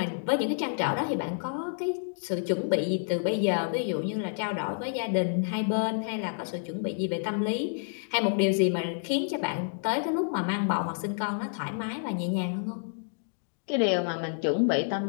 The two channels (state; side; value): silent; right; digital silence